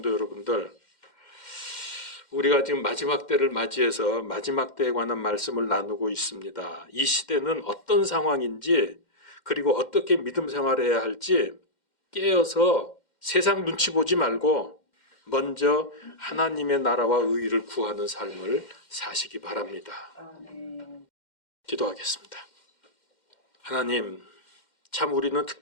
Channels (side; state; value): right; late; 2.1 ms